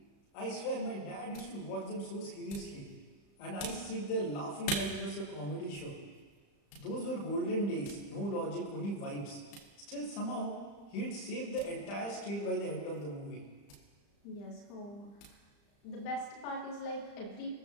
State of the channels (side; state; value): right; late; 35 ms